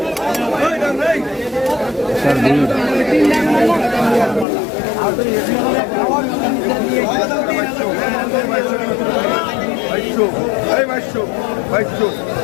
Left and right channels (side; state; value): right; drops out; at 4.5 s